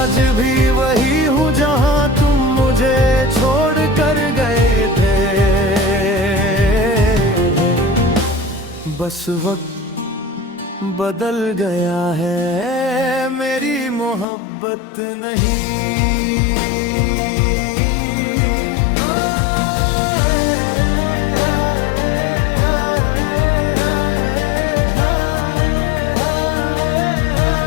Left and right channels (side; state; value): right; drops out; at 14.2 s